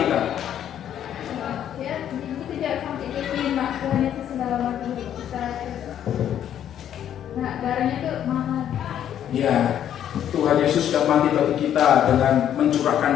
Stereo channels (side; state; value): right; quieter; 10.2 dB